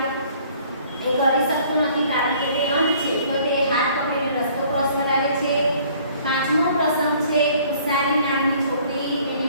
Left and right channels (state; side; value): inverted; both; correlation -0.57